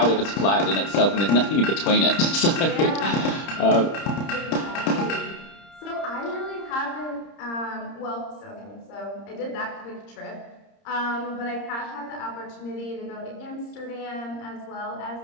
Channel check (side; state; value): right; late; 30 ms